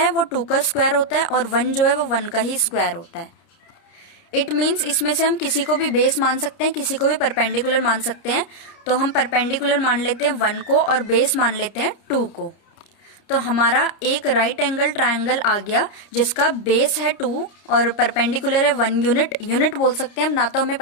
वो 2 का स्क्वायर होता है और 1 जो है वो 1 का ही स्क्वायर होता है। इट मीन्स इसमें से हम किसी को भी बेस मान सकते हैं, किसी को भी परपेंडिकुलर मान सकते हैं। तो हम परपेंडिकुलर मान लेते हैं 1 को और बेस मान लेते हैं 2 को। तो हमारा एक राइट एंगल ट्रायंगल आ गया जिसका बेस है 2 और परपेंडिकुलर है 1 यूनिट। यूनिट बोल सकते हैं हम, ना तो हमें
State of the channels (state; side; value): late; right; 30 ms